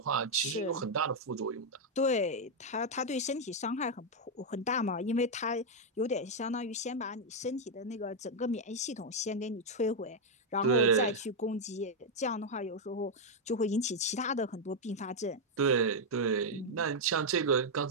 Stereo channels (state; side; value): normal; both; correlation -0.01